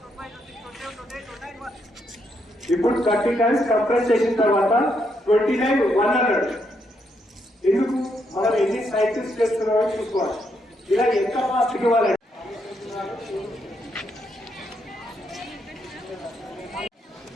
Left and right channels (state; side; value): normal; both; correlation 0.77